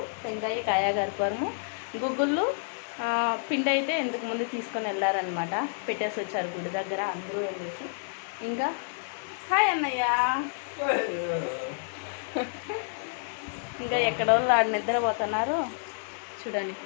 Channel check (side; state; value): right; silent; 58 dB below the other